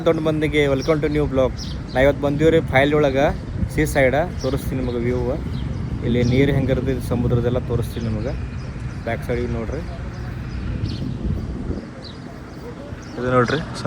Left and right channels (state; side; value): identical; both; correlation 1.00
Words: ದೊಡ್ಡ ಮಂದಿಗೆ ವೆಲ್ಕಮ್ ಟು ನ್ಯೂ ಬ್ಲಾಗ್. ನಾ ಇವತ್ತು ಬಂದೀವ್ರಿ ಫೈಲ್ ಒಳಗೆ ಸೀ ಸೈಡ ತೋರಿಸ್ತೀನಿ ನಿಮಗೆ ವ್ಯೂ. ಇಲ್ಲಿ ನೀರು ಹೆಂಗಿರ್ತದೆ ಸಮುದ್ರದೆಲ್ಲ ತೋರಿಸ್ತೀನಿ ನಿಮಗೆ. ಬ್ಯಾಕ್ ಸೈಡಿಗೆ ನೋಡ್ರಿ, ಇದು ನೋಡ್ರಿ